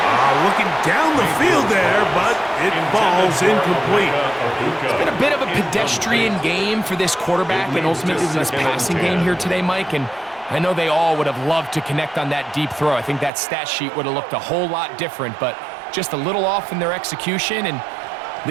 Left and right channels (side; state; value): left; drops out; at 13.3 s